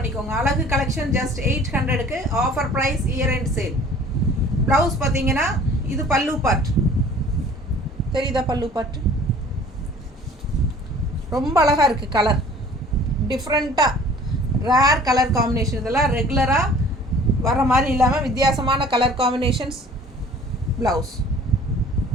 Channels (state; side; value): normal; both; correlation 0.50